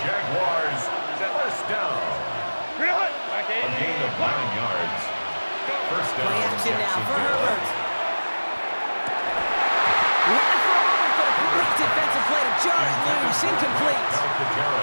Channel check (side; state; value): both; inverted; correlation -1.00